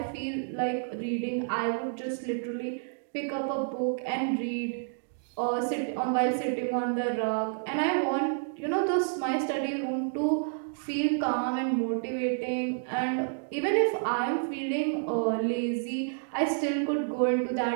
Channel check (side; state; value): left; silent; digital silence